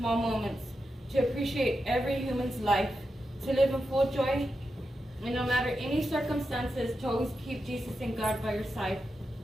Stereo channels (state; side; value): normal; both; correlation 0.88